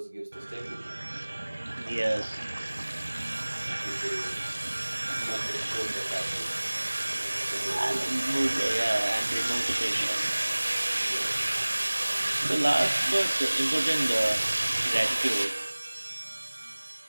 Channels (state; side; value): inverted; both; correlation -1.00